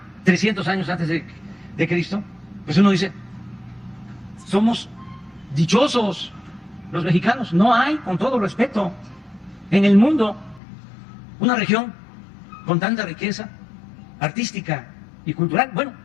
300 años antes de Cristo, pues uno dice, somos dichosos los mexicanos. No hay, con todo respeto, en el mundo una región con tanta riqueza artística y cultural. Bueno,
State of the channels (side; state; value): right; drops out; at 10.6 s